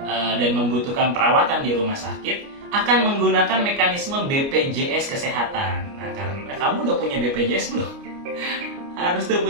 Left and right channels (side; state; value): left; late; 29 ms